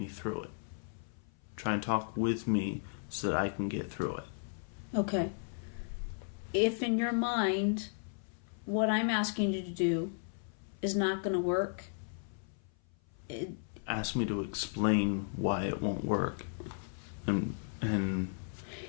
through it. Try and talk with me so that I can get through it. Okay. If in your mind what I'm asking you to do is not going to work, ask me to explain why it won't work.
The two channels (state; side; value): silent; right; 54 dB below the other